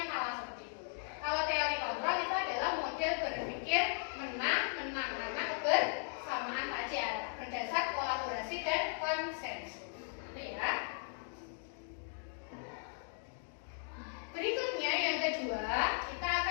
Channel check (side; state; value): right; silent; 53 dB below the other